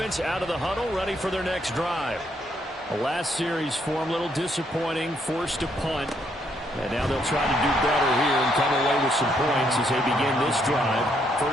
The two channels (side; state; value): both; normal; correlation 0.73